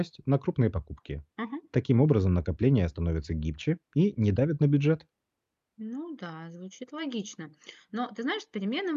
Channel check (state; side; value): identical; both; correlation 1.00